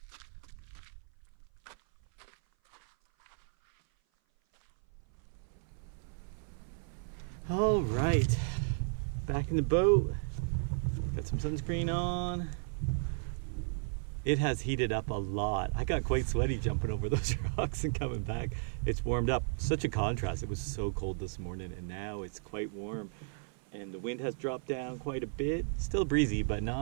All right, back in the boat. Got some sunscreen on. It has heated up a lot. I got quite sweaty jumping over those rocks and coming back. It's warmed up. Such a contrast. It was so cold this morning and now it's quite warm. And the wind has dropped down quite a bit. Still breezy, but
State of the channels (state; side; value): silent; left; 55 dB below the other